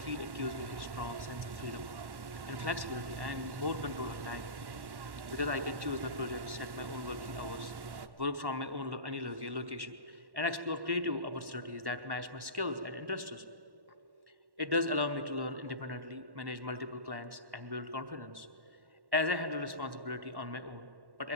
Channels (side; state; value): left; late; 1.1 ms